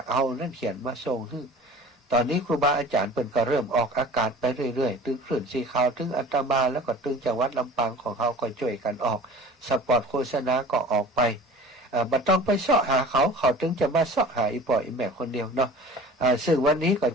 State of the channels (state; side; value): normal; both; correlation 0.43